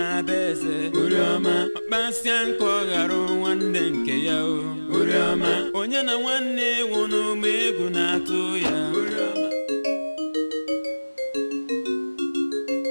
beze Urioma akpasianko garo nwanne nke ya o Urioma onye na nwanne wunu megwu na atụ ya Urioma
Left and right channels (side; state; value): both; inverted; correlation -1.00